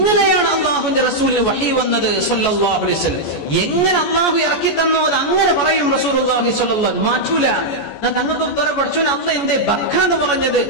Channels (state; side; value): late; right; 14 ms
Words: അള്ളാഹുവിന്റെ റസൂലിന് വഹി വന്നത് സ്വല്ലല്ലാഹു അലൈഹി വസല്ലം. എങ്ങനെ അള്ളാഹു ഇറക്കി തന്നോ അത് അങ്ങനെ പറയും റസൂലുള്ളാഹി സ്വല്ലല്ലാഹു അലൈഹി വസല്ലം. മാറ്റൂല. തങ്ങൾക്ക് ഉത്തരം പഠിച്ചു അല്ല എന്തേ ബക്ക എന്ന് പറഞ്ഞത്?